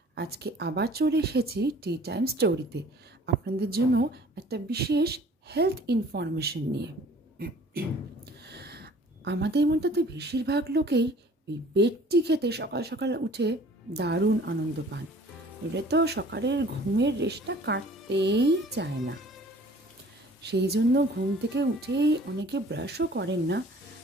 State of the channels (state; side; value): normal; both; correlation 0.51